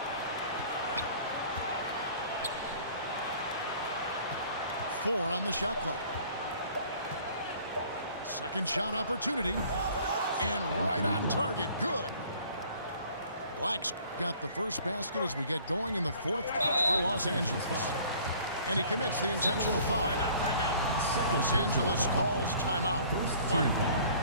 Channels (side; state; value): both; inverted; correlation -0.53